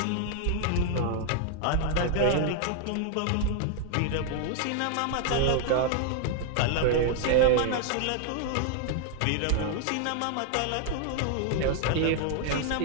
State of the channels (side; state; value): both; different; correlation 0.00